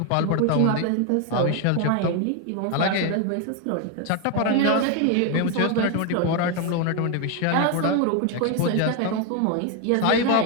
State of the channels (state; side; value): different; both; correlation 0.01